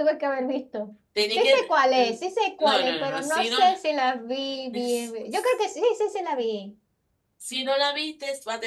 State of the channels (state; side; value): identical; both; correlation 1.00